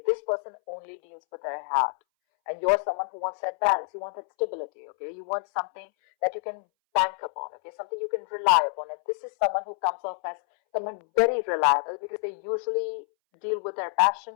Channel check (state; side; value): silent; right; 60 dB below the other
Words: This person only deals with their heart. And you're someone who wants that balance. You want that stability, okay? You want something that you can bank upon, okay? Something you can rely upon. And this is someone who comes off as someone very reliable, because they usually deal with their passion.